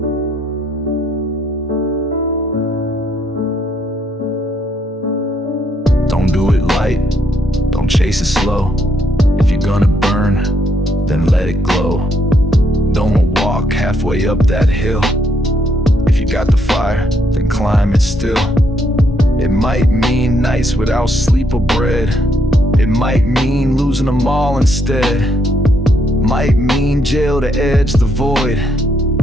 Don't do it light, don't chase it slow. If you're gonna burn, then let it glow. Don't walk halfway up that hill. If you got the fire, then climb it still. It might mean nights without sleep or bread. It might mean losing them all instead. Might mean jail to edge the void.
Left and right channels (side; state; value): both; normal; correlation 0.73